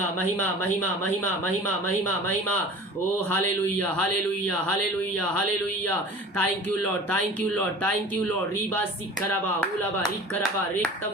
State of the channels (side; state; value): both; normal; correlation 0.40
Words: महिमा महिमा महिमा महिमा महिमा महिमा। ओ hallelujah hallelujah hallelujah hallelujah. Thank you Lord, thank you Lord, thank you Lord. रीबा सिखरबा हुलबा रिखरबा